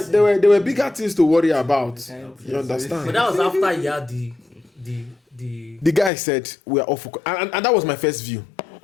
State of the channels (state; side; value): drops out; right; at 6.1 s